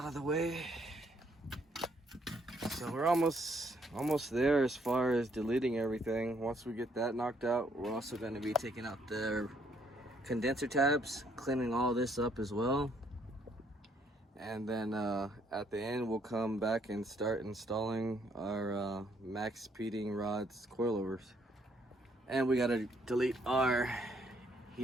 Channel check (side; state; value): both; normal; correlation 0.69